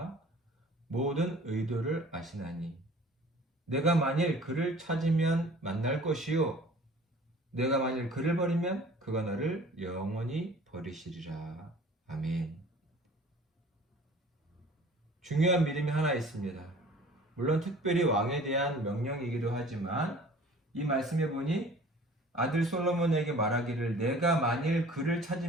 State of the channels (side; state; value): both; normal; correlation 0.47